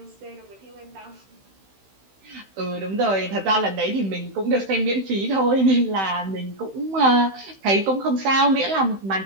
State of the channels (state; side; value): late; left; 16 ms